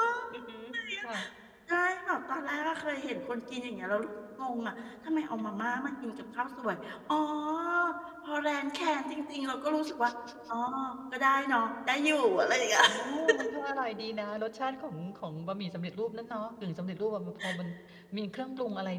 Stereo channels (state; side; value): identical; both; correlation 1.00